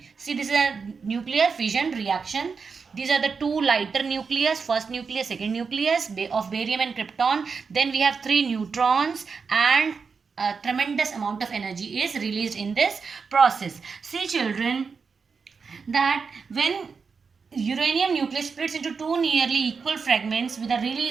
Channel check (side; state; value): left; quieter; 5.3 dB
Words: See, this is a nuclear fission reaction. These are the two lighter nucleus, first nucleus, second nucleus of barium and krypton. Then we have three neutrons, and a tremendous amount of energy is released in this process. See, children, that when uranium nucleus splits into two nearly equal fragments with a